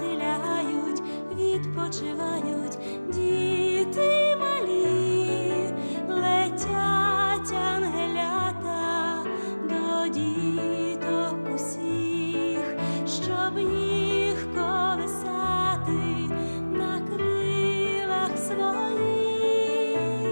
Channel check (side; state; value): both; inverted; correlation -1.00